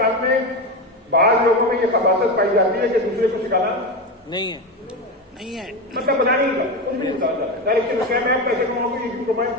में बाहर लोगों में ये खबासत पाई जाती है कि दूसरे को सिखाना नहीं है। नहीं है। मतलब बता नहीं था, कुछ भी नहीं बताया जाता। डायरेक्शन क्या मैं पैसे कमाऊंगी, ये क्यों कमाए?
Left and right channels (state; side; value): normal; both; correlation 0.17